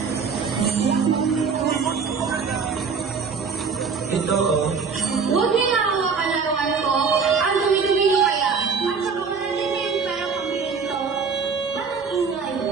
Ito, oh. Huwag niyo ako kalarawan ko. Ang dumi-dumi niyo kaya. At saka wala din kayong pera pambili nito. Ba't ang ingay?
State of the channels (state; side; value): quieter; left; 5.5 dB